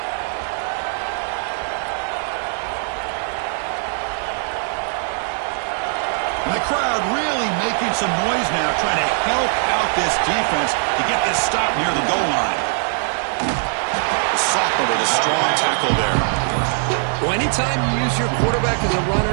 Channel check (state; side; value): silent; left; 60 dB below the other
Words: And the crowd really making some noise now, trying to help out this defense to get this stop near the goal line. The sophomore with a strong tackle there. Well, anytime you use your quarterback as a